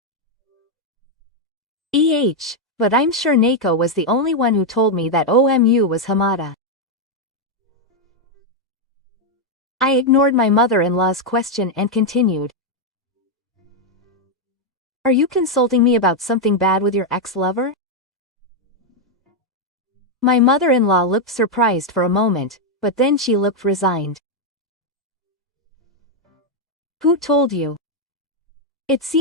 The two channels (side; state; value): both; normal; correlation 0.01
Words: EH, but I'm sure Neko was the only one who told me that Omu was Hamada. I ignored my mother-in-law's question and continued. Are you consulting me about something bad with your ex-lover? My mother-in-law looked surprised for a moment, but then she looked resigned. Who told you? It